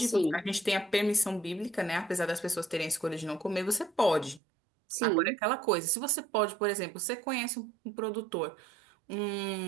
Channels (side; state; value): left; drops out; at 4.4 s